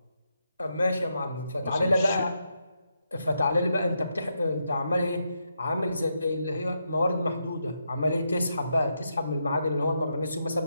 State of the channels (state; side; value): inverted; both; correlation -0.82